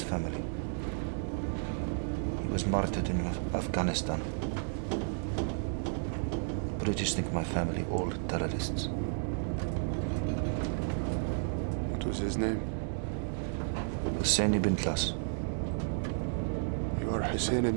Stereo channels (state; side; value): silent; left; digital silence